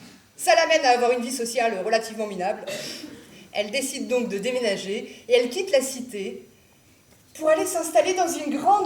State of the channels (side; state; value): both; identical; correlation 1.00